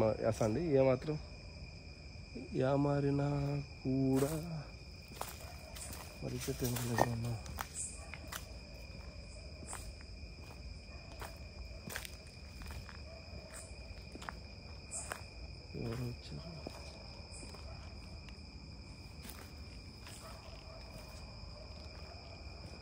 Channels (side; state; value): both; identical; correlation 1.00